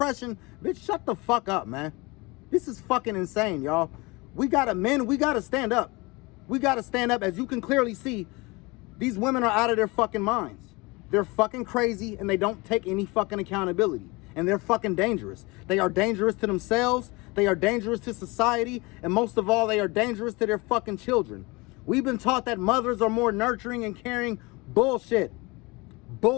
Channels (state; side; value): quieter; right; 24.9 dB